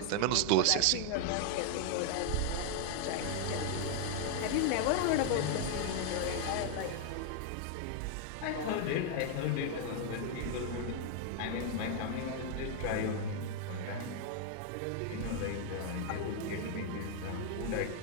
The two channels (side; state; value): both; different; correlation 0.00